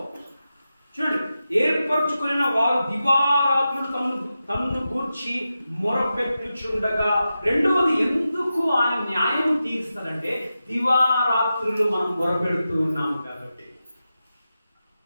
చూడండి, ఏర్పరచుకున్న వారు దివారాత్రులు తమను గూర్చి మొరపెట్టుచుండగా. రెండవది ఎందుకు ఆయన న్యాయం తీరుస్తాడంటే, దివారాత్రులు మనం మొరపెడుతూ ఉన్నాము కాబట్టి.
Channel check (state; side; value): inverted; both; correlation -0.91